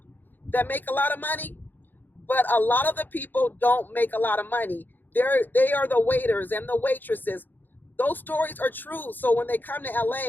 that make a lot of money, but a lot of the people don't make a lot of money. They are the waiters and the waitresses. Those stories are true. So when they come to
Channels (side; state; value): right; late; 0.089 ms